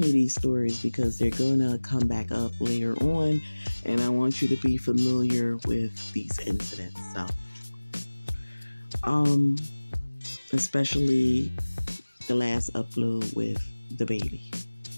you these stories because they're gonna come back up later on, and I want you to be familiar with these incidents. So, especially the last upload with the baby.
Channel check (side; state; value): both; inverted; correlation -1.00